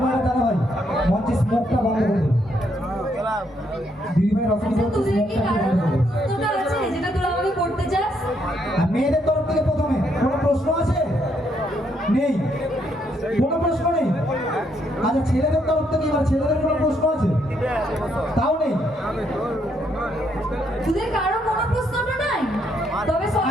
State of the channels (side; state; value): both; normal; correlation 0.74